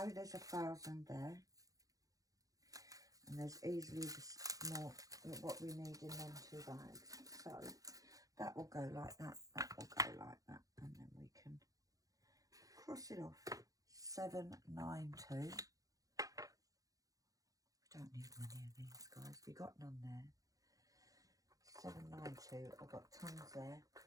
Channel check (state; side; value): late; left; 0.17 ms